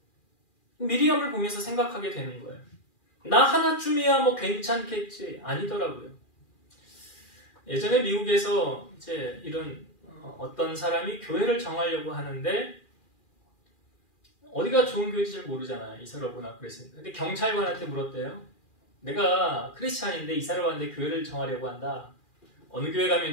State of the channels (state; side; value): late; right; 2.4 ms